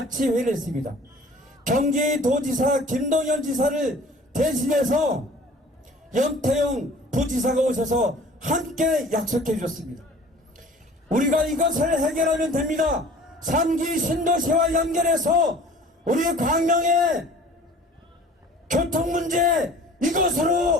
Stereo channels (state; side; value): normal; both; correlation 0.47